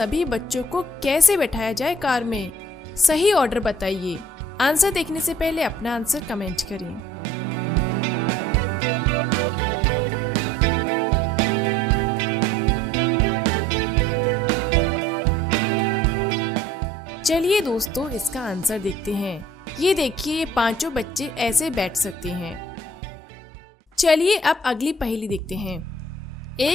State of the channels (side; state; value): both; normal; correlation 0.54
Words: बच्चों को कैसे बैठाया जाए कार में। सही ऑर्डर बताइए। आंसर देखने से पहले अपना आंसर कमेंट करें। चलिए दोस्तों, इसका आंसर देखते हैं। ये देखिए, ये 5 बच्चे ऐसे बैठ सकते हैं। चलिए अब अगली पहेली देखते हैं।